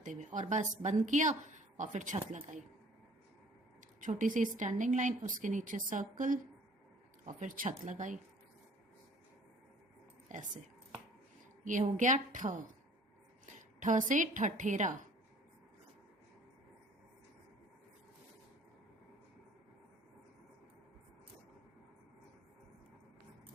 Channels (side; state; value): both; normal; correlation 0.53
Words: हुए, और बस बंद किया और फिर छत लगाई. छोटी सी स्टैंडिंग लाइन, उसके नीचे सर्कल और फिर छत लगाई ऐसे. ये हो गया ठ. ठ से ठठेरा,